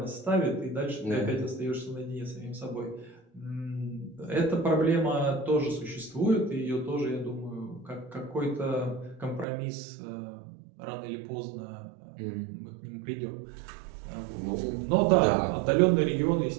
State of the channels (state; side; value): drops out; left; at 9.5 s